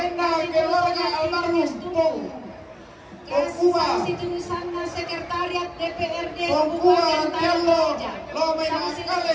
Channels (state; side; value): identical; both; correlation 1.00